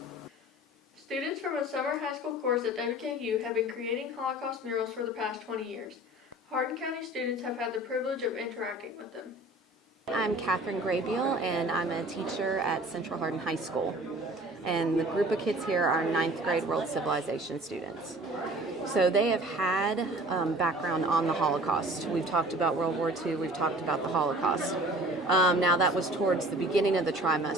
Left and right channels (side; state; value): both; normal; correlation 0.46